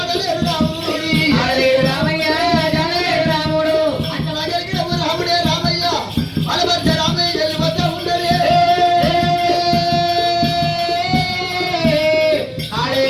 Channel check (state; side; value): identical; both; correlation 1.00